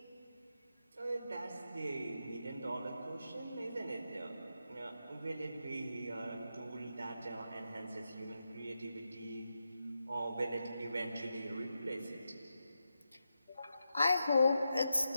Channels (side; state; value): both; inverted; correlation -0.88